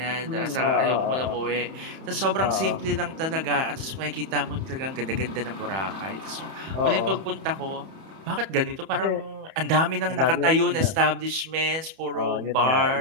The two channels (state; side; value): late; left; 31 ms